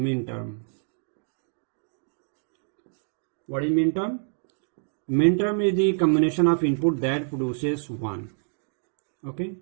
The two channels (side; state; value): left; silent; digital silence